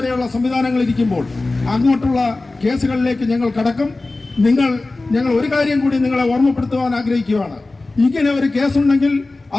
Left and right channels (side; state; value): right; quieter; 3.2 dB